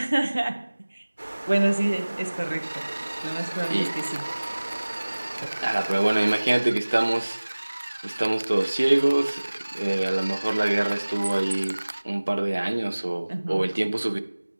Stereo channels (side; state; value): both; inverted; correlation -1.00